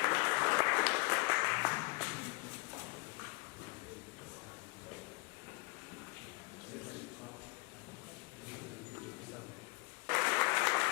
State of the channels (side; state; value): right; quieter; 28.0 dB